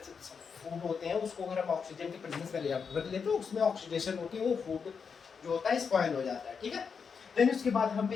फूड होते हैं, उसको अगर हम ऑक्सीजन की प्रेजेंस में रख लेते हैं, उसमें ऑक्सीडेशन होती है, वो फूड जो होता है स्पॉइल हो जाता है। ठीक है। देन उसके बाद हम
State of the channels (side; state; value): right; quieter; 6.0 dB